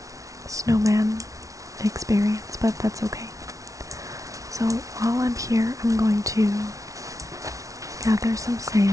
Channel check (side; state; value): left; late; 0.16 ms